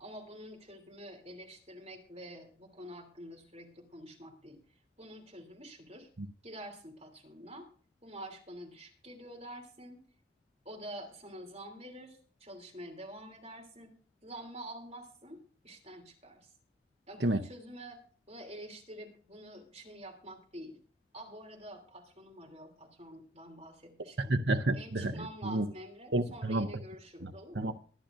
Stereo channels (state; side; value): normal; both; correlation 0.54